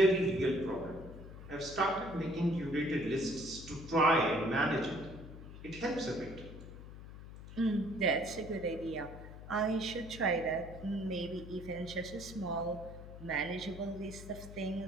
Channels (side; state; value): left; noise; hum, 13 dB below the sound